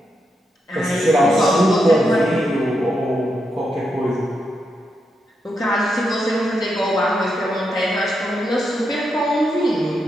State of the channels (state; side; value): normal; both; correlation 0.83